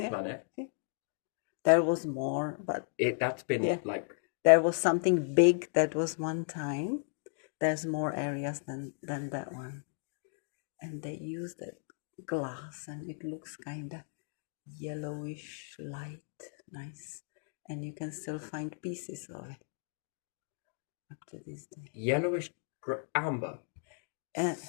planet, There was more, but that's been like... there was something big that was one time. There's more areas than that one. And they used that glass, and it looks kind of yellowish light, nice. And you can still find pieces of it up to this day. Yellowish amber.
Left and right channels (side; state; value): right; silent; digital silence